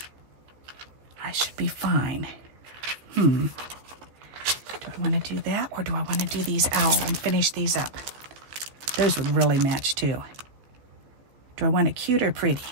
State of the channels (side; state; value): left; late; 15 ms